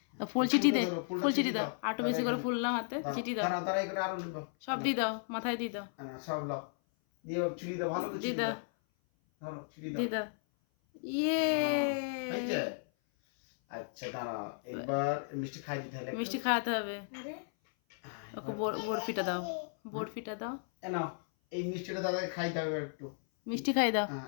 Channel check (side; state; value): right; silent; 55 dB below the other